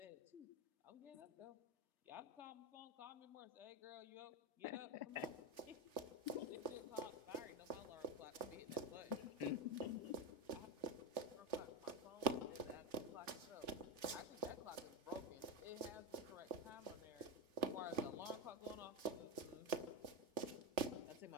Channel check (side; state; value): left; late; 3.4 ms